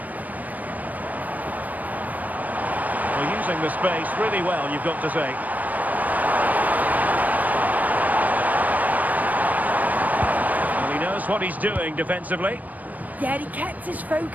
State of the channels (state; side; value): late; left; 0.079 ms